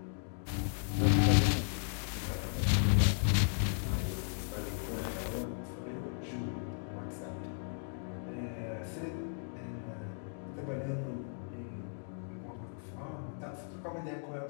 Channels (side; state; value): right; silent; digital silence